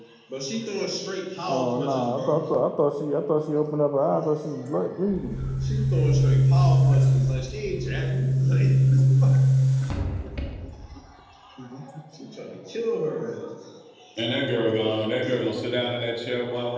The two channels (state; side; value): identical; both; correlation 1.00